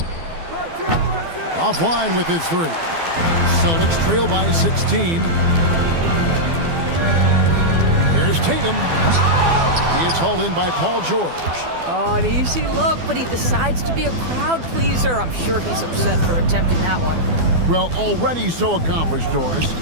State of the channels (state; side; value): late; left; 12 ms